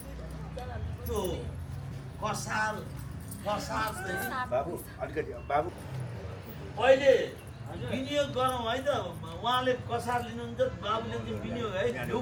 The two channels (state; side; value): identical; both; correlation 1.00